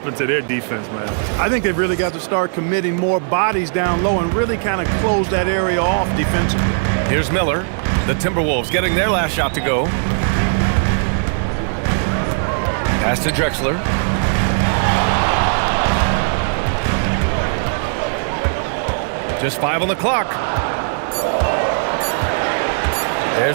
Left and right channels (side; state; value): left; silent; digital silence